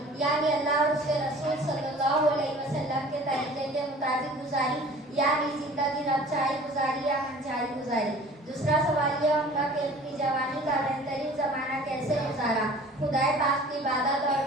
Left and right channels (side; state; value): both; normal; correlation 0.46